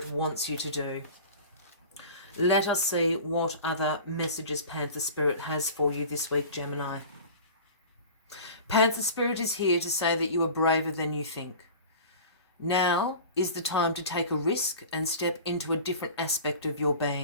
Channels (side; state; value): both; inverted; correlation -0.38